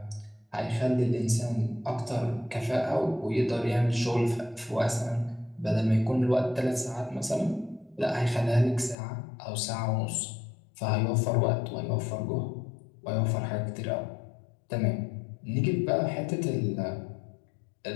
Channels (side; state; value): right; drops out; at 9.0 s